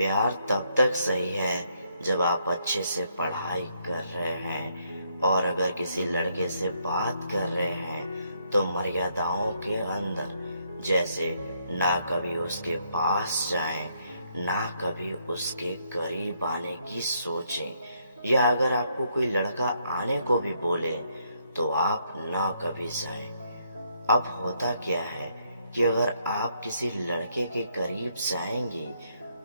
तब तक सही है जब आप अच्छे से पढ़ाई कर रहे हैं, और अगर किसी लड़के से बात कर रहे हैं तो मर्यादाओं के अंदर। जैसे ना कभी उसके पास जाएं, ना कभी उसके करीब आने की सोचें, या अगर आपको कोई लड़का आने को भी बोले तो आप ना कभी जाएं। अब होता क्या है कि अगर आप किसी लड़के के करीब जाएंगी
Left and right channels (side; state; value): both; inverted; correlation -0.73